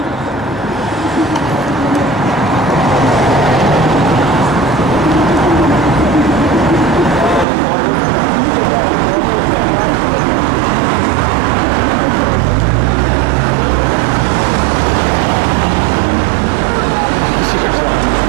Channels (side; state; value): left; drops out; at 7.5 s